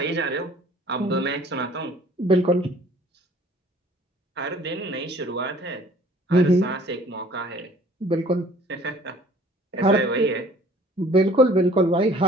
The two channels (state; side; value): normal; both; correlation 0.53